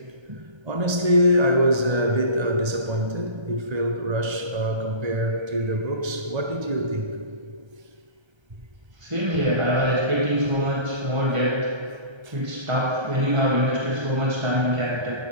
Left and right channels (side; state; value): left; late; 1.3 ms